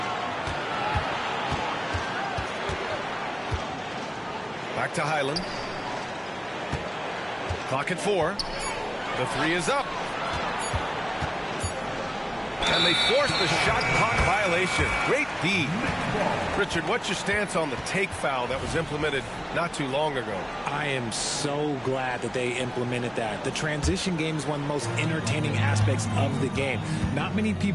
Back to Highland. Clock at 4. The three is up. And they force the shot clock violation. Great D. Richard, what's your stance on the take foul that was implemented not too long ago? I am so glad that they implemented that. The transition game is one of the most entertaining aspects of the game. Not many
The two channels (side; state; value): both; identical; correlation 1.00